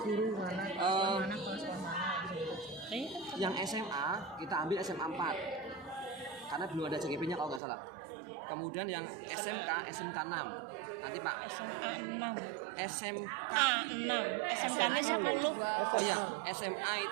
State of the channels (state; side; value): drops out; left; at 7.6 s